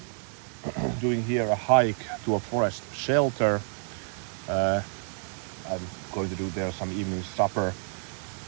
Doing here a hike to a forest shelter. I'm going to do there some evening supper.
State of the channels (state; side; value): silent; left; 59 dB below the other